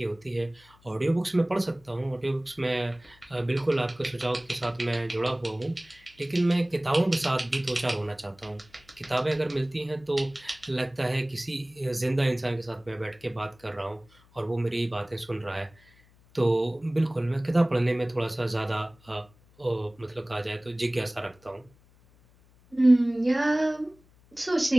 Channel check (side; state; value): left; noise; hum, 29 dB below the sound